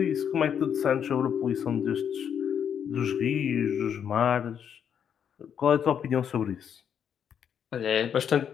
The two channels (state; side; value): quieter; right; 8.2 dB